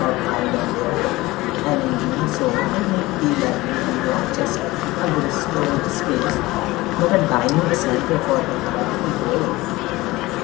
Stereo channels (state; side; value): quieter; right; 19.8 dB